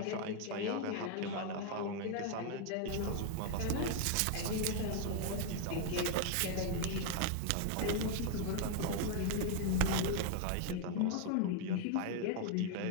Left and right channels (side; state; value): both; different; correlation 0.01